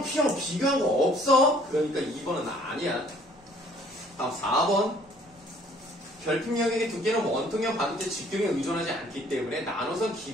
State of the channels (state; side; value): noise; right; hum, 29 dB below the sound